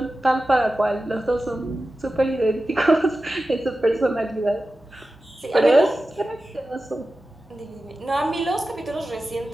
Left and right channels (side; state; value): both; normal; correlation 0.94